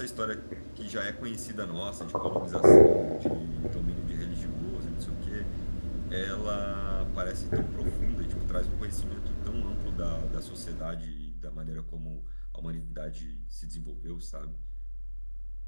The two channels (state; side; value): inverted; both; correlation -1.00